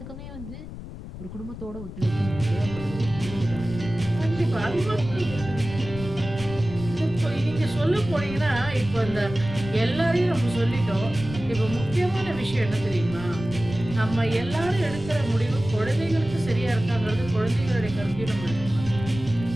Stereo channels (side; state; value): left; noise; rumble, 11 dB below the sound